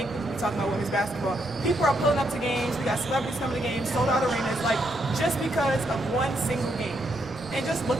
we'd be talking about women's basketball. People are pulling up to games, we got celebrities coming to games, sold out arenas, like, just because of one single game. And just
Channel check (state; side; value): normal; both; correlation 0.77